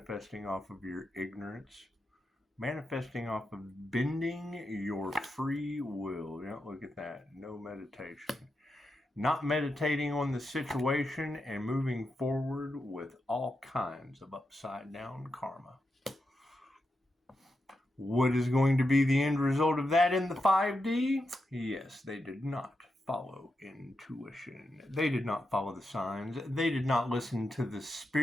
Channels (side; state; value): both; normal; correlation 0.87